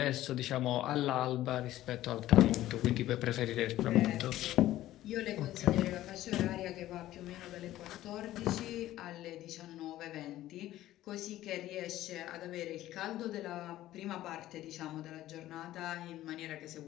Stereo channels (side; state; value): right; quieter; 14.5 dB